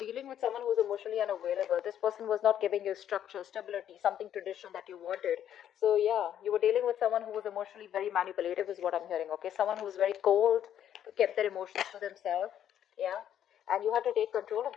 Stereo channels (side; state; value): right; quieter; 10.3 dB